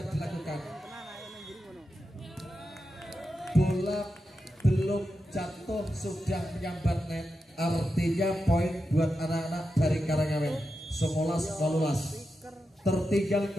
dilakukan. Bola belum jatuh sudah menyambar net, artinya poin buat anak-anak dari Karangawen. 19-12. Tertinggal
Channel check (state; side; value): normal; both; correlation 0.89